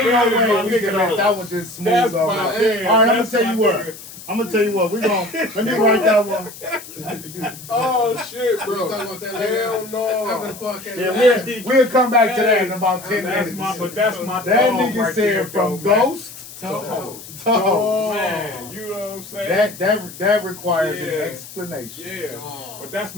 no way we can let that one just smooth over. All right, I'm gonna tell you what. Let me write that one. Oh shit, bro. Hell no. Yeah, we'll come back to that in about 10 minutes. That's my that dog nigga right said there, from though, ghost to host. Man, you know what I'm saying? That requires an explanation. Yeah. But that's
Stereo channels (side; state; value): left; noise; hiss, 15 dB below the sound